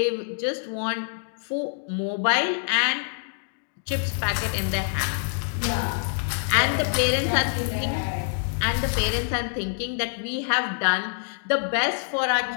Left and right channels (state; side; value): silent; right; digital silence